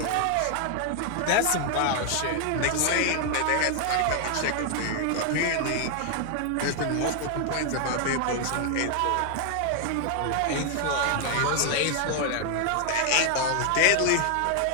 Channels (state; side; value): different; both; correlation 0.00